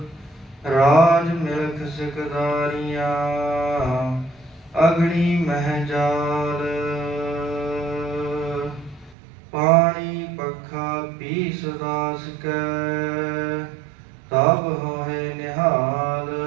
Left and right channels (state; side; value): drops out; left; at 9.2 s